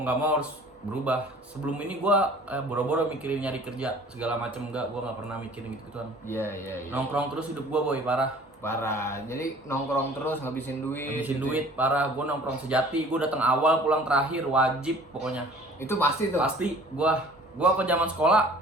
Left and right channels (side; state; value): both; normal; correlation 0.49